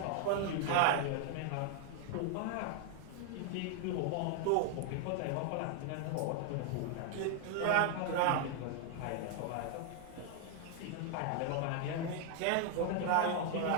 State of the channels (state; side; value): different; both; correlation 0.00